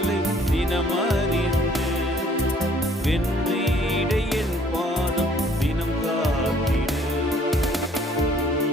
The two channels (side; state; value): both; normal; correlation 0.59